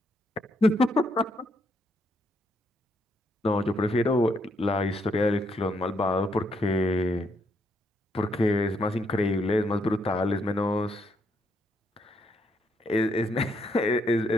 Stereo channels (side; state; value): both; normal; correlation 0.75